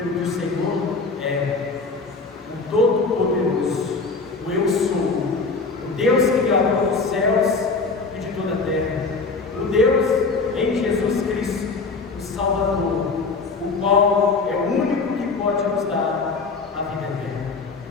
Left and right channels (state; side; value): quieter; right; 4.2 dB